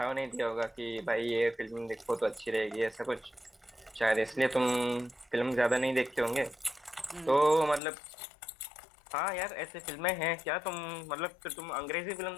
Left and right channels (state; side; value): drops out; right; at 7.8 s